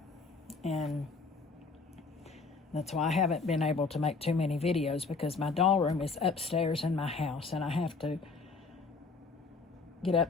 and that's why I haven't been able to make too many videos, because my doll room is upstairs in my house and I have to get up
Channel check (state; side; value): quieter; right; 4.3 dB